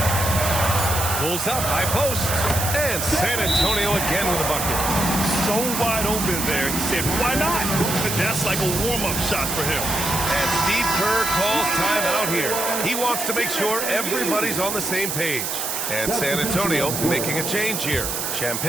Pulls up, high post. And San Antonio again with a bucket. So wide open there. He said, why not? But that's like a warm-up shot for him. And Steve Kerr calls timeout here. He wants to make sure everybody's on the same page. And San Antonio making a change here.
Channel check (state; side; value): noise; right; hiss, 2 dB below the sound